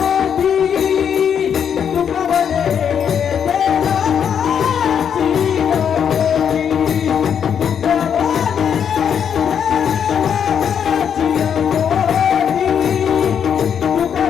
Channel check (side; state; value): right; quieter; 8.0 dB